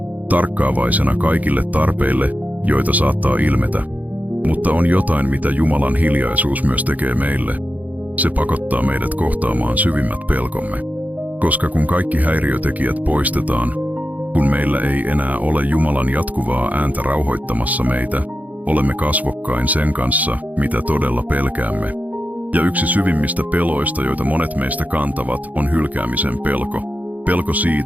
tarkkaavaisena kaikille tarpeille, joita saattaa ilmetä. Mutta on jotain, mitä Jumalan hiljaisuus myös tekee meille. Se pakottaa meidät kohtaamaan syvimmät pelkomme. Koska kun kaikki häiriötekijät poistetaan, kun meillä ei enää ole Jumalan jatkuvaa ääntä rauhoittamassa meitä, olemme kasvokkain sen kanssa, mitä todella pelkäämme. Ja yksi syvimmistä peloista, joita monet meistä kantavat, on hylkäämisen pelko. Pelko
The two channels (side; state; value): left; late; 0.077 ms